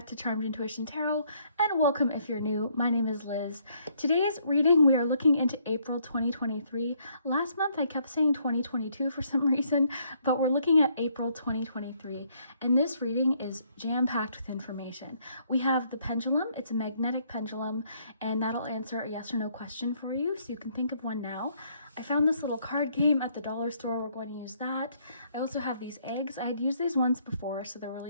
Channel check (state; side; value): inverted; both; correlation -0.68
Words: to Charmed Intuition Tarot, and welcome if you're new. My name is Liz. Today's reading, we are looking into April 2023. Last month I kept saying 2022 for some reason, but we're looking at April 2023. And this reading is jam-packed with information. We have the pendulum, it's a magnetic pendulum, and that'll answer a yes or no question for you, so you can think of one now. I found this little card game at the dollar store. We're going to use that. I also have these eggs. I had used these once before, so they're